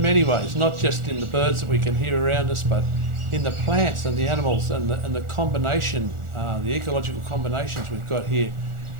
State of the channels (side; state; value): left; late; 1.4 ms